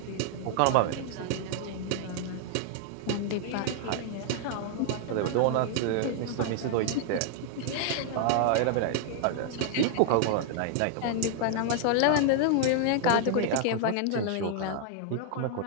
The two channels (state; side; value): different; both; correlation -0.01